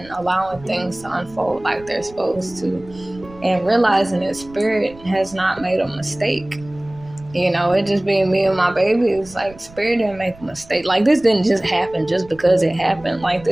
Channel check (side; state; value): right; noise; rumble, 21 dB below the sound